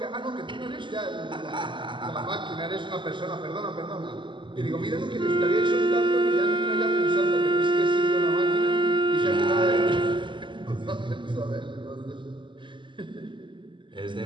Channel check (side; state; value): left; late; 0.24 ms